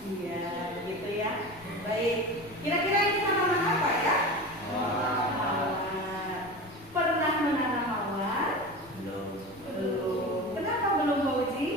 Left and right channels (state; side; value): noise; left; rumble, 23 dB below the sound